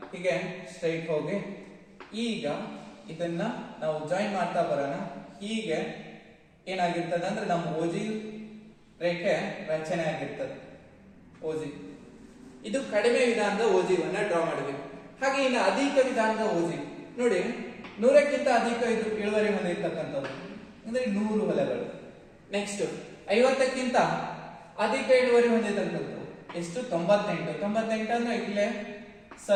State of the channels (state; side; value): identical; both; correlation 1.00